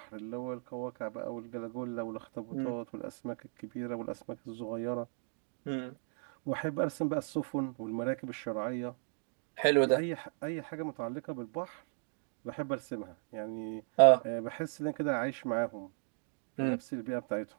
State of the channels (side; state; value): left; silent; digital silence